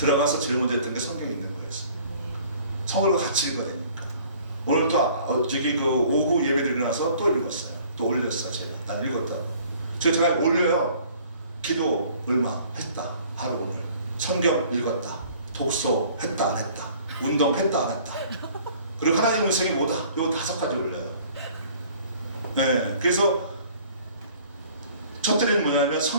제일 먼저 했던 게 성경에 있는 거였어요. 성경을 같이 읽어야 되니까. 오늘 또 저기 그 오후 예배 드리고 나서 또 읽었어요. 또 올렸어요. 제가. 난 읽었다고. 제가 올려요. 기도 얼마 했다. 하루 오늘. 성경 읽었다. 독서 했다 안 했다. 운동 했다 안 했다. 그리고 하나님의 음성이 뭐다. 요 5가지 올려요. 네, 그래서 첫째는 뭐냐면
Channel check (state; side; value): inverted; both; correlation -0.53